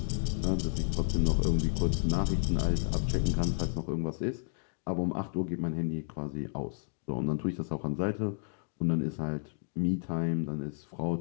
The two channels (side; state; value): right; silent; digital silence